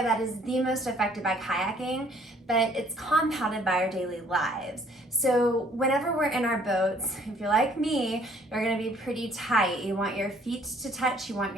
that is the most affected by kayaking, but it's compounded by our daily lives. So whenever we're in our boats, if you're like me, you're going to be pretty tight. You want your feet to touch, you want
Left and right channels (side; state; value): both; normal; correlation 0.60